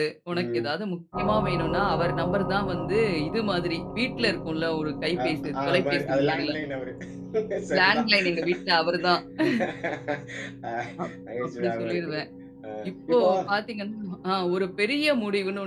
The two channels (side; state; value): both; identical; correlation 1.00